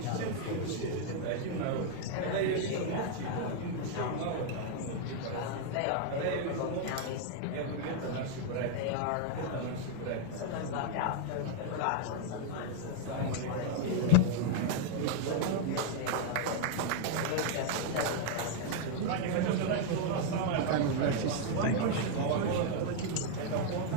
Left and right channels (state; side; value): different; both; correlation 0.00